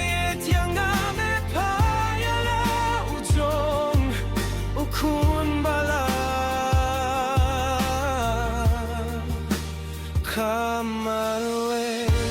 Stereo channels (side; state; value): both; identical; correlation 1.00